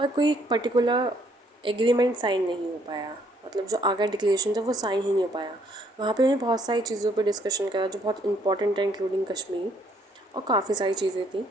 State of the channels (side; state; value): both; normal; correlation 0.67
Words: कोई पर्टिकुलर एग्रीमेंट साइन नहीं हो पाया। मतलब जो आगरा डिक्लेरेशन था वो साइन ही नहीं हो पाया। वहाँ पे उन्हें बहुत सारी चीज़ों पे डिस्कशन करा जो बहुत इंपॉर्टेंट है, इंक्लूडिंग कश्मीर और काफ़ी सारी चीज़ें थी,